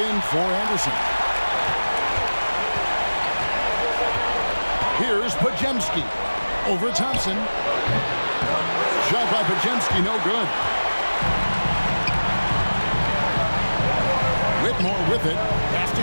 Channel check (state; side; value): inverted; both; correlation -1.00